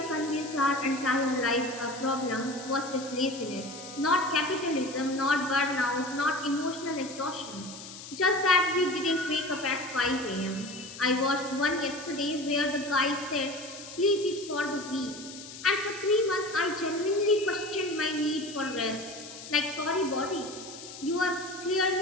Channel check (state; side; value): noise; left; hiss, 13 dB below the sound